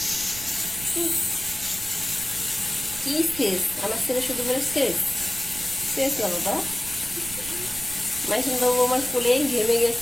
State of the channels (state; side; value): noise; right; rumble, 14 dB below the sound